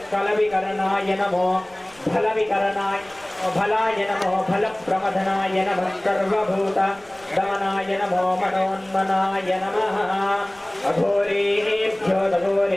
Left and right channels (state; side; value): noise; left; rumble, 28 dB below the sound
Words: कलविकरणाय नमो फलविकरणाय फलाय नमो फलप्रमथनाय नमः सर्वभूत दमनाय नमो मनोन्मनाय नमः अघोरेभ्यो